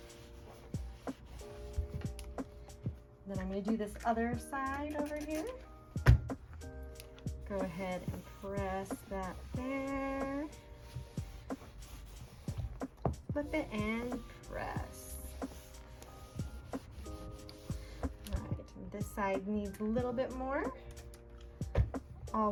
Then I'm gonna do this other side over here. Go ahead and press that there. Flip it and press. All right, and this side needs a little bit more.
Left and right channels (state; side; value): identical; both; correlation 1.00